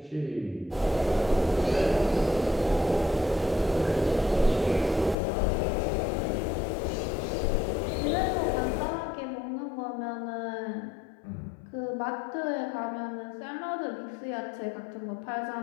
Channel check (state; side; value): drops out; right; at 5.2 s